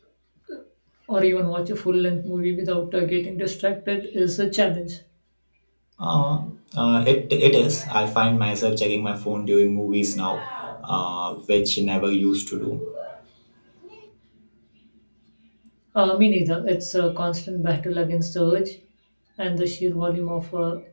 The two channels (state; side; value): inverted; both; correlation -1.00